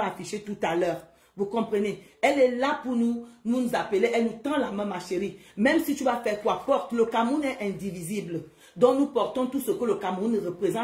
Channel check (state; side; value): identical; both; correlation 1.00